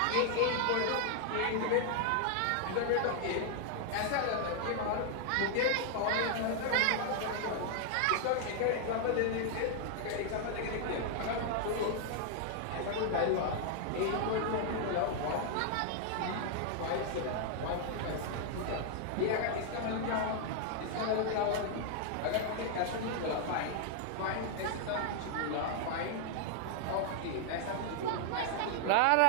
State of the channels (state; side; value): different; both; correlation 0.00